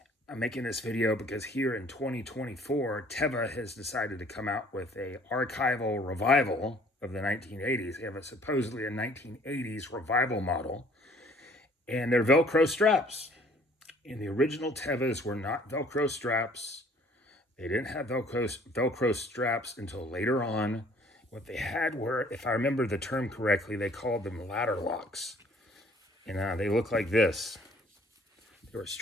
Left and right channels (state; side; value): normal; both; correlation 0.57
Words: I'm making this video because here in 2024, Teva has decided to come out with a archival revival of the 1980s. They have supposedly a 1980s revival model, and they're Velcro straps. And the original Tevas were not Velcro straps. They didn't have Velcro straps until later on. What they had were, if I remember the term correctly, they called them ladder locks. And they look like this. They were